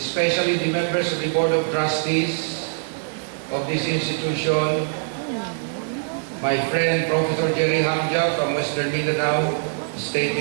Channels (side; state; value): left; silent; 63 dB below the other